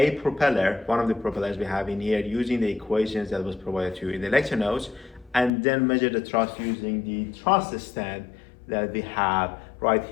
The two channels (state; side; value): drops out; right; at 5.5 s